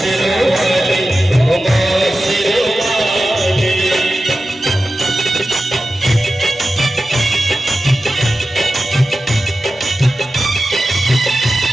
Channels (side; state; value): both; normal; correlation 0.93